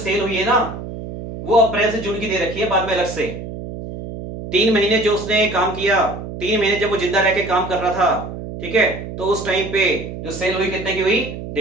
हुई है ना वो अप्रैल से जून की दे रखी है, बाद में अलग से 3 महीने जो उसने काम किया, 3 महीने जब वो जिंदा रह के काम कर रहा था, ठीक है, तो उस टाइम पे जो सेल हुई कितने की हुई,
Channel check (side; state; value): right; noise; hum, 9 dB below the sound